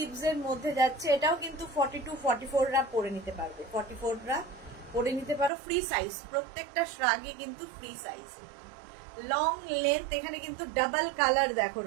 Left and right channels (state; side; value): drops out; left; at 5.5 s